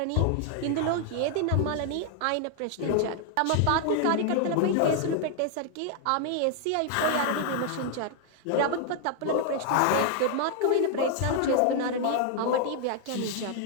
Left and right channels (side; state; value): both; different; correlation 0.00